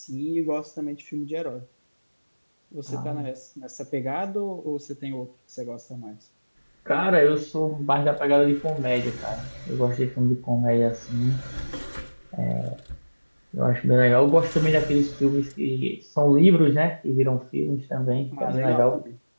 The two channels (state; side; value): inverted; both; correlation -1.00